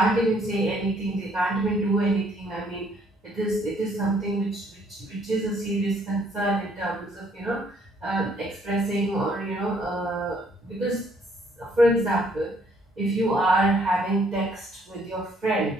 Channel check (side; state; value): both; normal; correlation 0.65